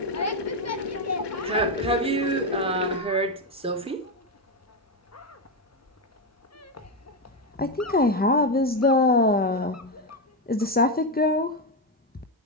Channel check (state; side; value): normal; both; correlation 0.08